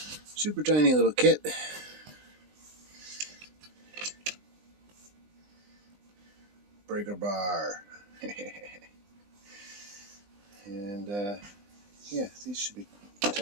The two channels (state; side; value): late; left; 20 ms